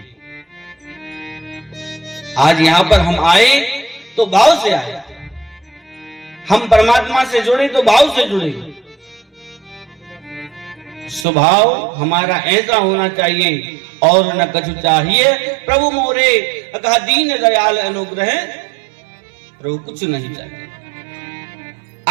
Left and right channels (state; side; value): drops out; left; at 11.2 s